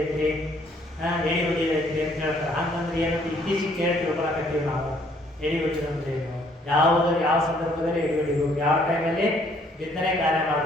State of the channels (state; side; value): normal; both; correlation 0.64